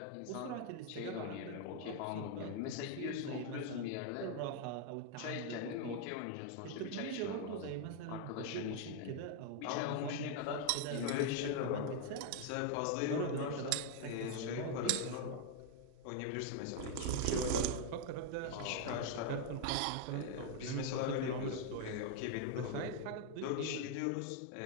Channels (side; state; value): both; different; correlation 0.00